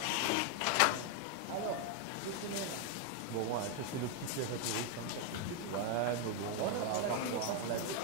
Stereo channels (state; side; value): different; both; correlation 0.01